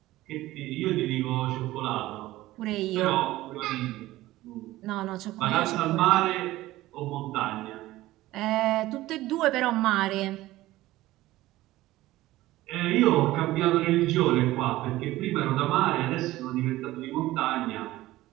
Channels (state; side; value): quieter; left; 16.8 dB